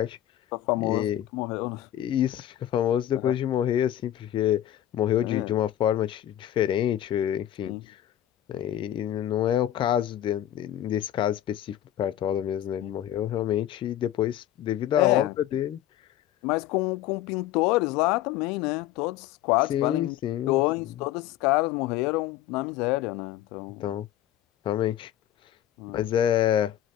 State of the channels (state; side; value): quieter; right; 12.3 dB